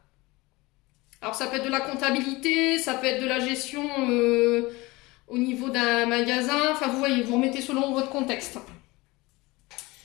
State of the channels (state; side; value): quieter; right; 22.2 dB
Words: Alors, ça peut être de la comptabilité, ça peut être de la gestion au niveau d'un magasin. Enfin, vous voyez, vous remettez selon votre contexte.